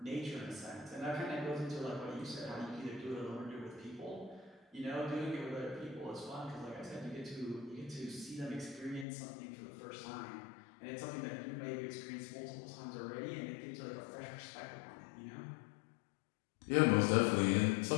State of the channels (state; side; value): drops out; right; at 9.1 s